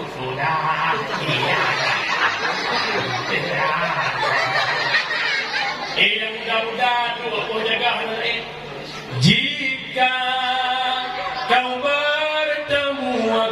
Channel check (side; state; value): both; identical; correlation 1.00